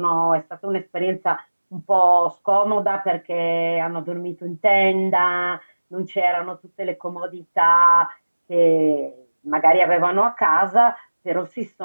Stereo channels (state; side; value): inverted; both; correlation -1.00